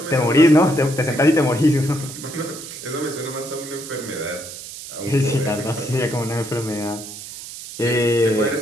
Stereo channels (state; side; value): noise; right; hiss, 12 dB below the sound